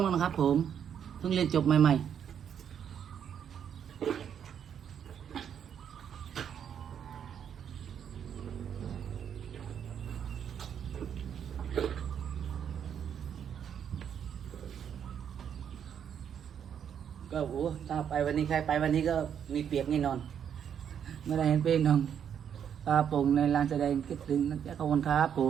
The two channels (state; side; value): quieter; left; 8.5 dB